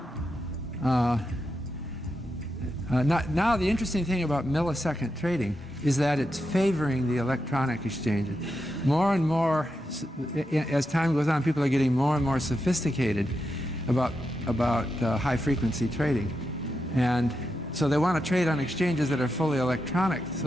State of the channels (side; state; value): both; normal; correlation 0.86